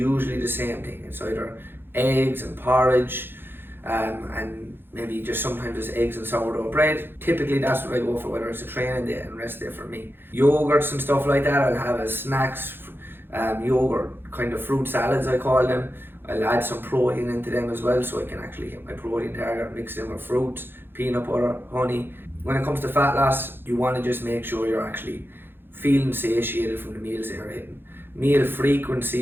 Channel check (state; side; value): late; left; 0.10 ms